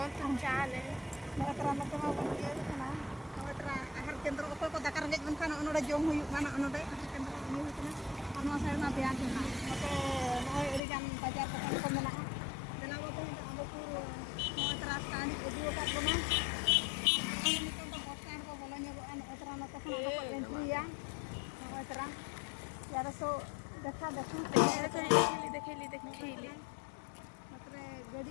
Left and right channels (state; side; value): drops out; right; at 10.8 s